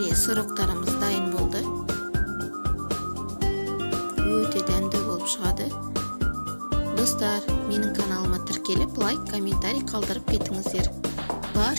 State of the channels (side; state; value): both; inverted; correlation -1.00